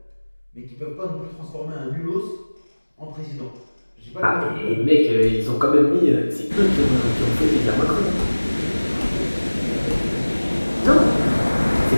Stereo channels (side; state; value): both; inverted; correlation -1.00